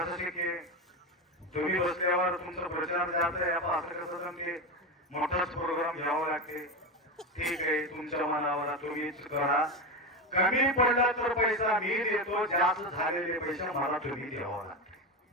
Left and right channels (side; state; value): both; normal; correlation 0.16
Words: शक्य? तुम्ही बसल्यावर तुमचा प्रचार जात आहे, असं कसं जमते? मोठाच प्रोग्राम घ्यावा लागते. ठीक आहे, तुमच्या मनावर तुम्हीच करा. कमी पडला तर पैसा मी देतो, जास्त झालेले पैसे मला तुम्ही द्यावा लागते